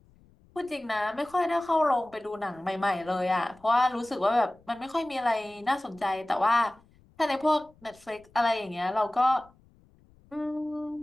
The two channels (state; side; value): noise; left; rumble, 30 dB below the sound